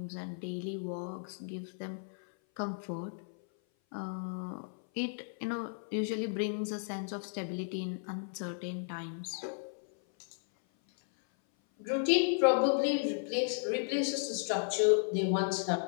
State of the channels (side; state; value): right; silent; 55 dB below the other